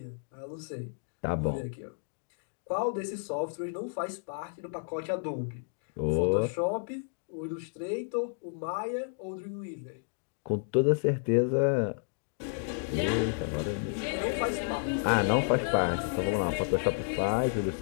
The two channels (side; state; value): right; silent; digital silence